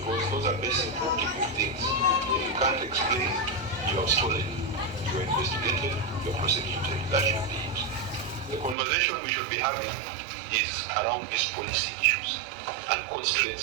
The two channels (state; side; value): drops out; left; at 8.8 s